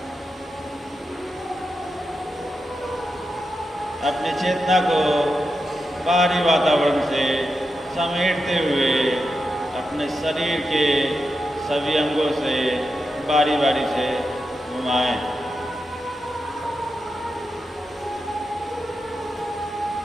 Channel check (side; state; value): both; normal; correlation 0.88